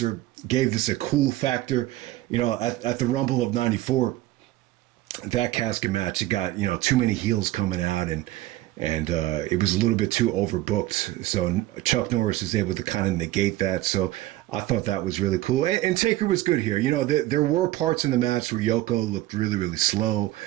gave this a cool factor. You know, at the Rumble of 94, that casket match, it got, you know, too many heels coming out and it was a little bit too overbooked. So Chuck Norris was able to kind of negate that. So I thought that was really cool. And Taker was good here. You know, there were parts in the match where Yoko looked really, really slow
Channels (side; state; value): left; quieter; 16.2 dB